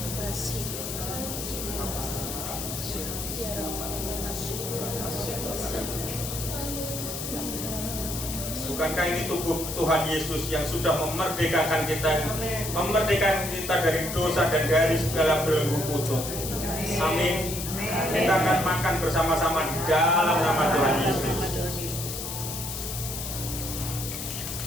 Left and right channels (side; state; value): left; noise; hiss, 6 dB below the sound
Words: Bukankah ini tubuh Tuhan Yesus yang sudah memerdekakan kita dari dosa dan dari segala belenggu kutuk. Amin. Kita akan makan bersama-sama di dalam nama Tuhan Yesus.